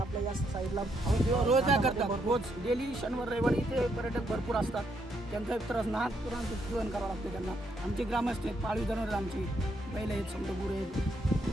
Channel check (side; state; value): both; normal; correlation 0.75